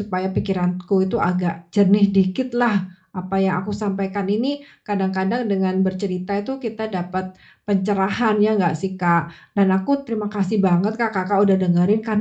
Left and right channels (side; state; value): both; identical; correlation 1.00